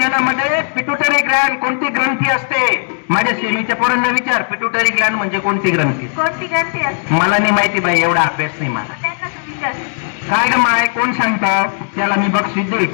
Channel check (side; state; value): right; silent; 63 dB below the other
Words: पिट्युटरी ग्लँड कोणती ग्रंथी असते माझ्या सेमीच्या पोरांना विचार पिट्युटरी ग्लँड म्हणजे कोणती ग्रंथी मला नाही माहिती बाई एवढा अभ्यास नाही मला काय ग माय कोण सांगतात त्याला मी बक्षीस देईल